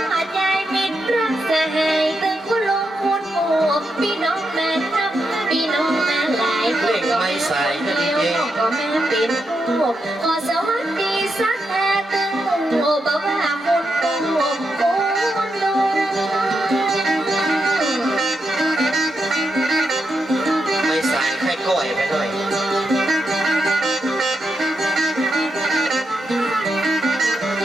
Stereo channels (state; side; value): normal; both; correlation 0.84